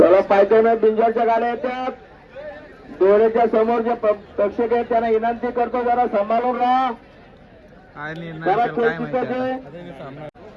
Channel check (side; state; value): both; identical; correlation 1.00